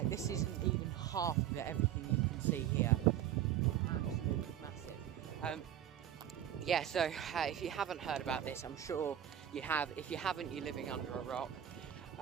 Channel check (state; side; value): quieter; left; 10.8 dB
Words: This isn't even half of everything you can see here. Absolutely massive. Yeah, so if you haven't heard about this, I'm sure you have. If you haven't, you're living under a rock.